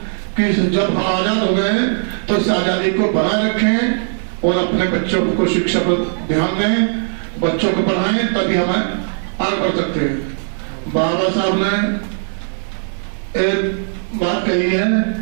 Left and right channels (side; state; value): left; silent; digital silence